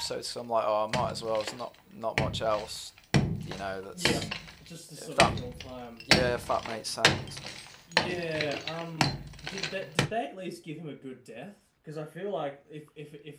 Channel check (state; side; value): identical; both; correlation 1.00